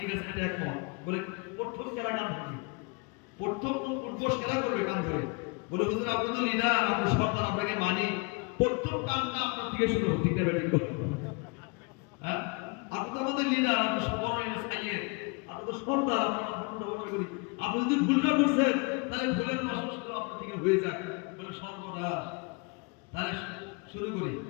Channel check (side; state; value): right; quieter; 30.9 dB